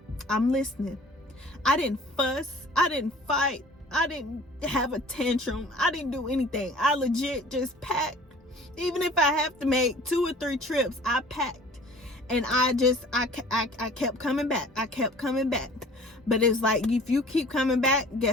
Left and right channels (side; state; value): both; normal; correlation 0.48